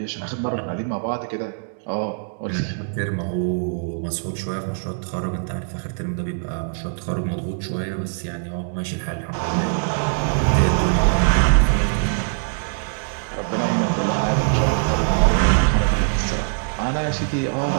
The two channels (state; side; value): silent; left; digital silence